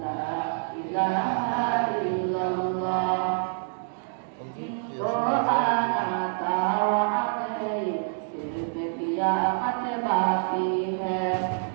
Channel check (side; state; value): left; silent; digital silence